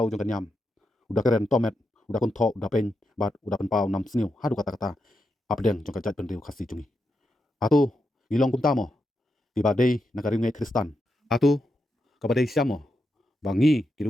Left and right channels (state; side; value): normal; both; correlation 0.85